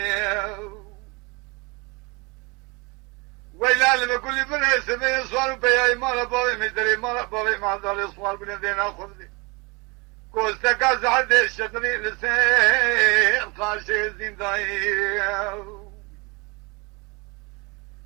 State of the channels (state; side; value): quieter; left; 28.0 dB